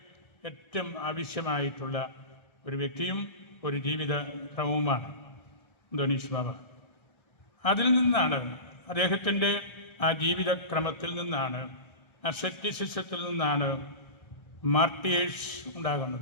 ഏറ്റവും ആവശ്യമായിട്ടുള്ള ഒരു വ്യക്തിയും ഒരു ജീവിത ക്രമവുമാണ് അന്തോനീസ് ബാവ. അതിൽ നിന്നാണ്, അദ്ദേഹത്തിൻ്റെ ആ ജീവിതക്രമത്തിൽ നിന്നാണ്, അസെറ്റിസിസത്തിൽ നിന്നാണ് മാർട്ടിയേഴ്സ്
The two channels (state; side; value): late; right; 1.6 ms